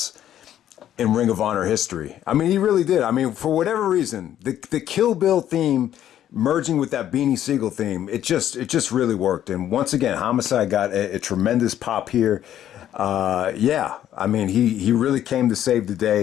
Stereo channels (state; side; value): quieter; right; 11.3 dB